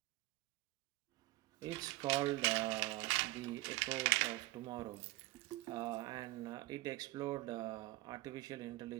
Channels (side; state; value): left; quieter; 19.3 dB